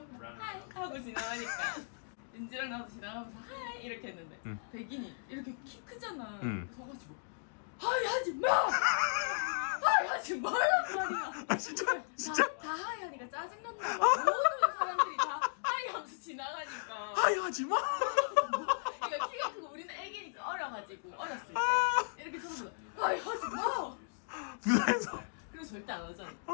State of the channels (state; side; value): silent; right; digital silence